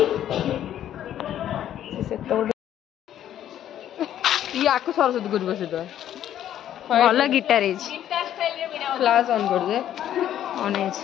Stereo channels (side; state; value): right; quieter; 11.1 dB